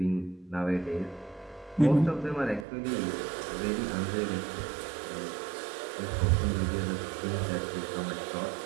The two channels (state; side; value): drops out; left; at 2.7 s